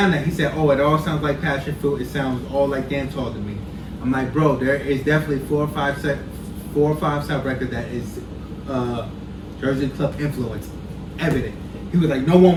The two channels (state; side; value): identical; both; correlation 1.00